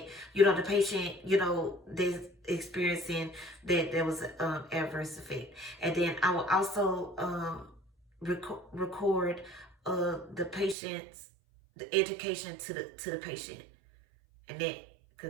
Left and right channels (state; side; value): drops out; left; at 10.8 s